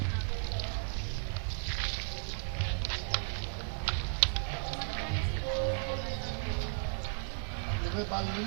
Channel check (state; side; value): silent; left; 54 dB below the other